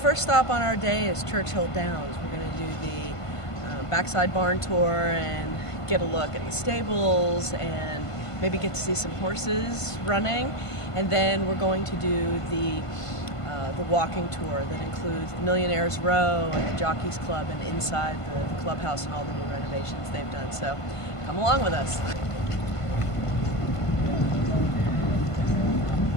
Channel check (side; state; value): right; late; 1.5 ms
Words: stop on our day is Churchill Downs. We're going to do the backside barn tour and get a look at the stables and maybe get to see some horses running. And then we're going to do the walking tour that includes the Millionaire's Row and the Jockeys Club and inside the clubhouse and all the new renovations they've done. So come along with us.